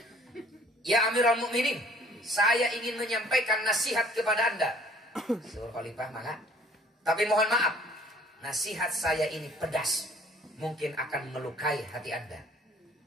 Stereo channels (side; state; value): both; normal; correlation 0.55